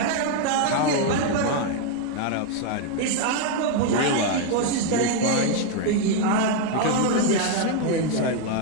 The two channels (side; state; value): both; different; correlation 0.01